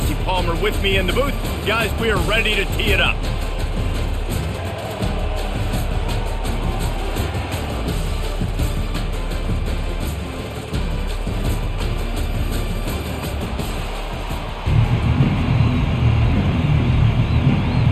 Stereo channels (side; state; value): both; identical; correlation 1.00